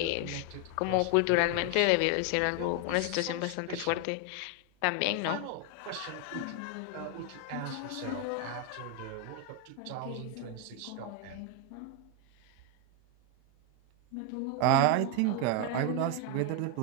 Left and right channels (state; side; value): different; both; correlation 0.01